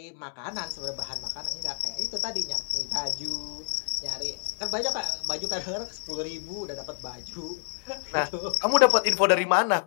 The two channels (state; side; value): silent; right; digital silence